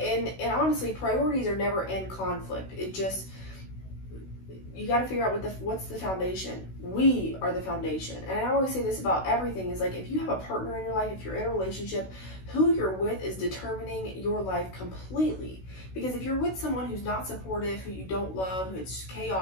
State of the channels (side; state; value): right; late; 16 ms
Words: honestly, priorities are never in conflict. It just, you got to figure out what's the foundation. We are the foundation. And I always say this about everything is like, if you have a partner in your life, if you're in a relationship, who you're with is determining your life completely. Because if you're with someone who's not supportive, who you don't love, who's